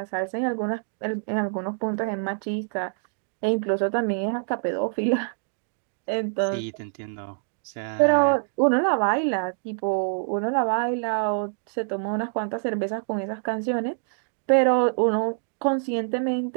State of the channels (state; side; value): silent; left; digital silence